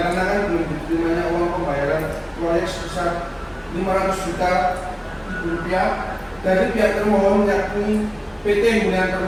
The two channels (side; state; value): both; identical; correlation 1.00